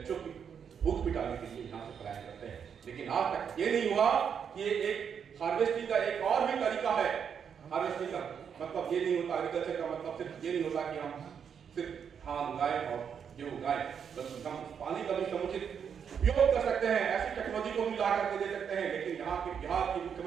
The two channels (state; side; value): quieter; left; 7.4 dB